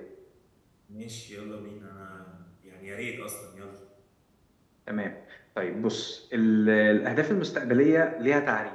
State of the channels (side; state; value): both; identical; correlation 1.00